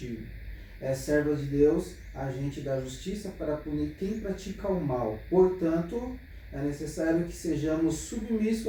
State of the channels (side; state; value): both; identical; correlation 1.00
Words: É serva de Deus, agente da justiça para punir quem pratica o mal. Portanto, é necessário que sejamos